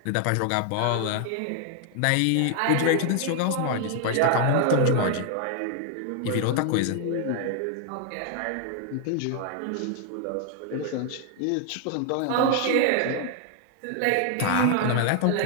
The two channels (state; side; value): different; both; correlation 0.00